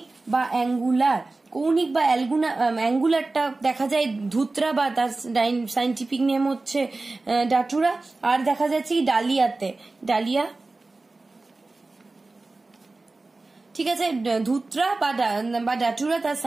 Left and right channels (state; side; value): quieter; left; 3.3 dB